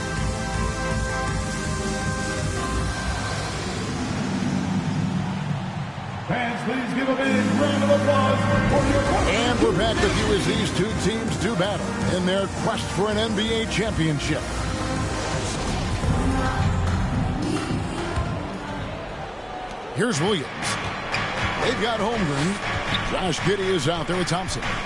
Fans, please give a big round of applause for your opponent. And we're back with you as these two teams do battle in their quest for an NBA championship. Here's Williams. They've got Holmgren. Josh Giddey is out there with Thompson.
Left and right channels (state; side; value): identical; both; correlation 1.00